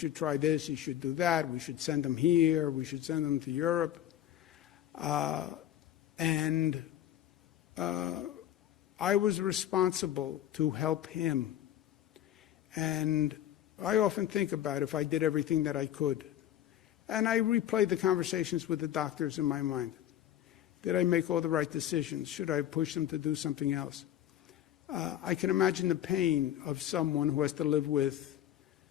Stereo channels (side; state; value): right; quieter; 11.6 dB